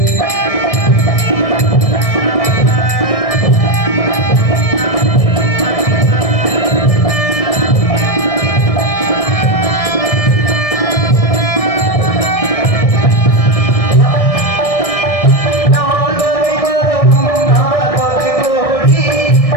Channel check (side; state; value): right; late; 1.6 ms